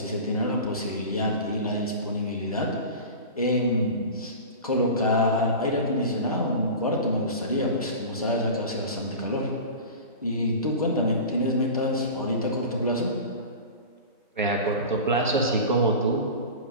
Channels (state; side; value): inverted; both; correlation -0.32